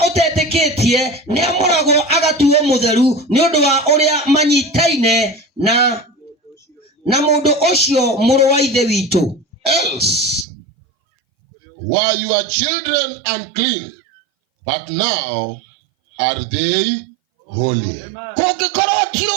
utetikitie niamuragwo agatuo mutheru ni undu wa uria manyitaine na mundu ucio muru wa ithe witu. Else were your children unclean, but now are they holy. Kungikorwo ti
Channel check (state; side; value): drops out; left; at 10.5 s